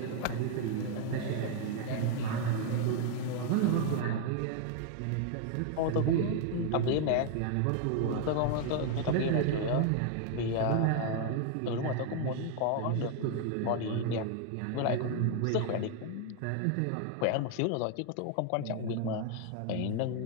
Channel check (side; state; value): both; different; correlation 0.00